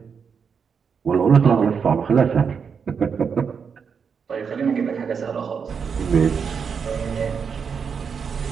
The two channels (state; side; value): quieter; left; 6.3 dB